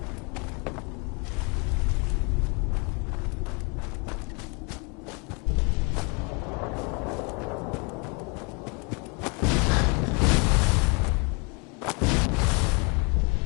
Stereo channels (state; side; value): quieter; right; 32.5 dB